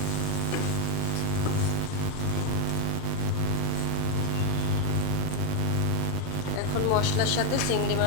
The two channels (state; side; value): different; both; correlation 0.01